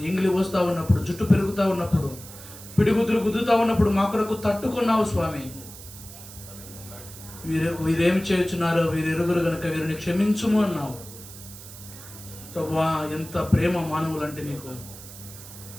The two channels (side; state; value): right; noise; hiss, 16 dB below the sound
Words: ఇంగిలి పోస్తూ ఉన్నప్పుడు, జుట్టు పెరుగుతూ ఉన్నప్పుడు, పిడిగుద్దులు గుద్దుతూ ఉన్నప్పుడు మా కొరకు తట్టుకున్నావు స్వామి. వీరేమి చేయుచున్నారో వీరు ఎరుగురు గనుక వీరిని క్షమించుము అన్నావు. ప్రభువా, ఎంత ప్రేమ మానవులంటే నీకు.